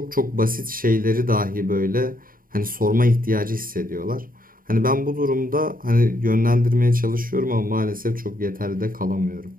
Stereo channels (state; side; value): late; left; 0.41 ms